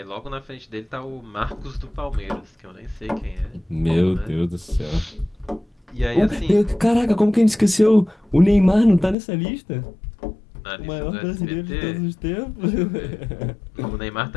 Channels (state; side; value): drops out; right; at 9.2 s